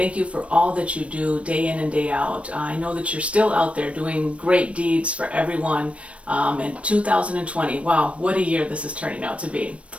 you for all that you do day in and day out. I know that you're still out there doing great deeds for everyone in 2020. Wow, what a year this is turning out to be.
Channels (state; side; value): late; left; 0.062 ms